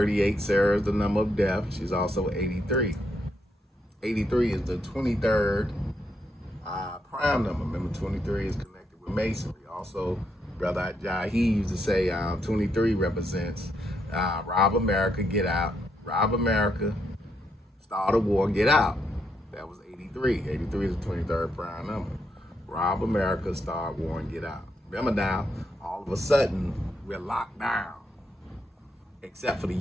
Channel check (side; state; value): both; normal; correlation 0.78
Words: Sarah is the number of death. She's also 83. 83 is the 23rd prime number. Remember, 23 is connected with masonry. Also, Brother Jahi used to say 23 represents rob America, get out. Rob America, start a war, get out. That was 83. 83 is the 23rd prime number. Rob America, start war, and get out. Remember now, all of a sudden, we're locked down. Except for the